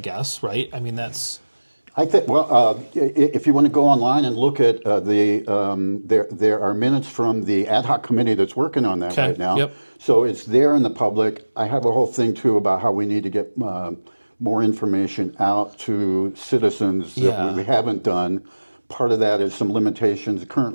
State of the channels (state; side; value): inverted; both; correlation -1.00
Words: right? I mean, that's... I think, if you want to go online and look at there are minutes from the ad hoc committee that's working on that right now. Yep. So it's there in the public. I have a whole thing, too, about how we need to get more information out to citizens that we haven't done. Part of that is some limitations